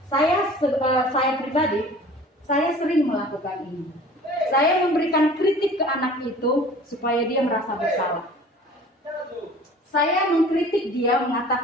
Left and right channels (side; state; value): both; normal; correlation 0.45